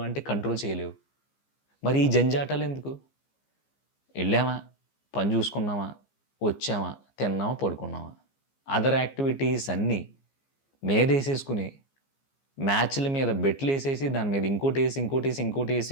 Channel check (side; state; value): right; late; 15 ms